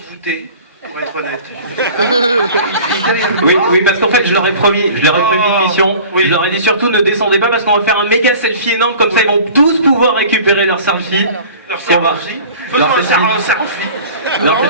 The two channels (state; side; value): inverted; both; correlation -0.43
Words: voûté, pour être honnête. Oui, parce qu'en fait, je leur ai promis une mission. Oui. Je leur ai dit surtout ne descendez pas parce qu'on va faire un méga selfie énorme, comme ça ils vont tous pouvoir récupérer leur selfie. Leur selfie. Faisons un selfie.